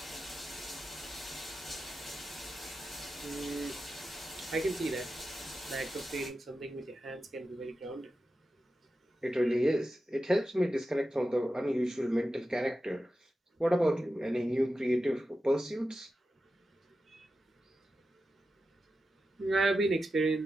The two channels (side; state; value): both; normal; correlation 0.91